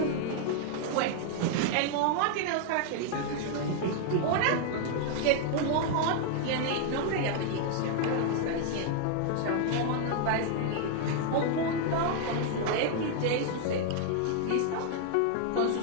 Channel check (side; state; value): both; different; correlation 0.00